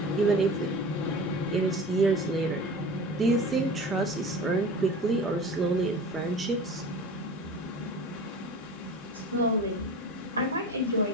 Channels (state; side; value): normal; both; correlation 0.36